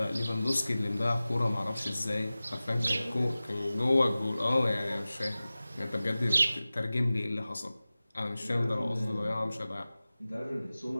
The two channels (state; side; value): inverted; both; correlation -0.97